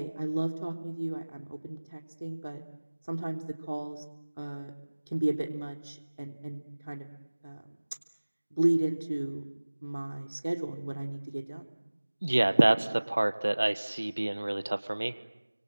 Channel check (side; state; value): both; inverted; correlation -1.00